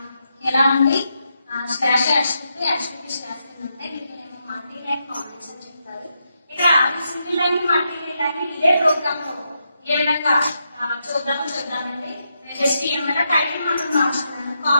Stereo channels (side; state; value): both; inverted; correlation -0.83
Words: ఎలా ఉంది స్లాష్ HTTP స్లాష్ అంటే వీటినేమో మల్టీ లైన్ కామెంట్స్ అని చెప్తారు. ఇక్కడ సింగిల్ లైన్ మల్టీ లైన్ ఇదే ప్రోగ్రామ్ లో ఏ విధంగా చూద్దామండి. HTML టైటిల్ మాత్రం మార్చుకున్నాను.